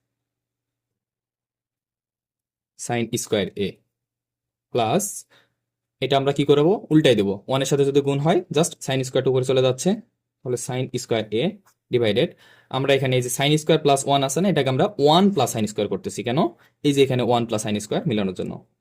sine square A plus, এটা আমরা কি করবো? উল্টাই দেবো, 1 এর সাথে যদি গুণ হয় জাস্ট সাইন স্কোয়ারটা উপরে চলে যাচ্ছে, তাহলে সাইন স্কোয়ার এ ডিভাইডেড, আমরা এখানে এই যে সাইন স্কোয়ার প্লাস 1 আছে না, এটাকে আমরা 1 প্লাস সাইন স্কোয়ার করতেছি, কেন? এই যে এখানে 1 প্লাস সাইন স্কোয়ার মিলানোর জন্য,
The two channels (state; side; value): identical; both; correlation 1.00